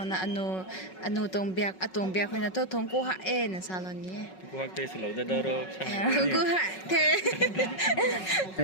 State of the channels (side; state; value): right; late; 5.4 ms